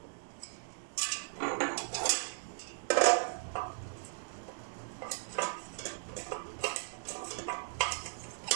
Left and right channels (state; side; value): silent; left; digital silence